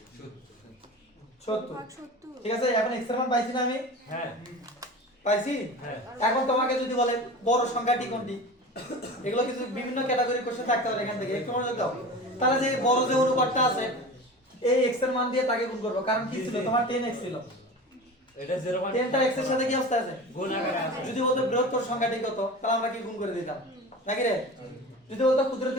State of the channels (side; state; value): both; normal; correlation 0.33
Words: ঠিক আছে? এখন x এর মান পাইছি না আমি? হ্যাঁ পাইছি। এখন তোমাকে যদি বলে বড় সংখ্যাটি কোনটি এগুলো কিছু বিভিন্ন ক্যাটাগরি কোশ্চেন থাকতে পারে এখান থেকে একটু মনোযোগ দাও। তাহলে যে বড় যে অনুপাতটা আছে এই x এর মান দিয়ে তাকে গুণ করব। কারণ কি ছিল? তোমার 10x ছিল। এটা 0.10 10টা x এর সাথে কি অবস্থা আছে? গুণ আকারে আছে। যদি বলতো বৃহত্তর সংখ্যাটি কত তাহলে আমরা কি গুণ করে দিতাম নাকি রে? যদি বলতো